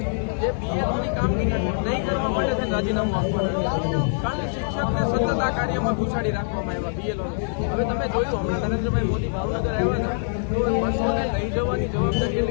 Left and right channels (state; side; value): silent; right; digital silence